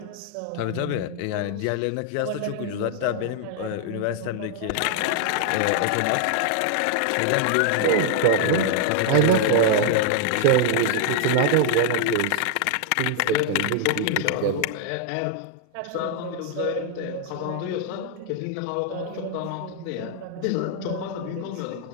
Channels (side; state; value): both; different; correlation 0.00